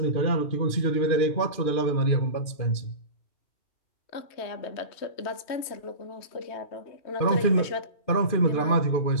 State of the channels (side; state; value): right; late; 2.5 ms